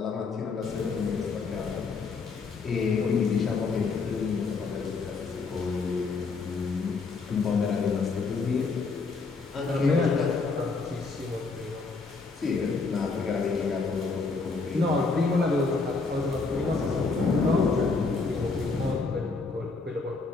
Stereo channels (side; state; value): right; quieter; 4.3 dB